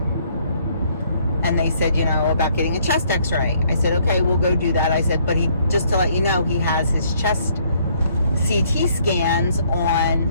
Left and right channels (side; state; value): both; inverted; correlation -0.65